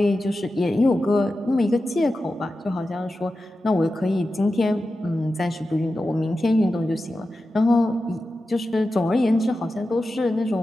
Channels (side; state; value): both; normal; correlation 0.92